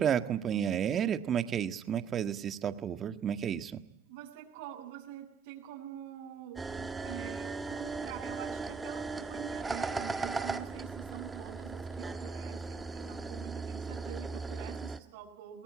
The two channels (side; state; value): left; quieter; 6.7 dB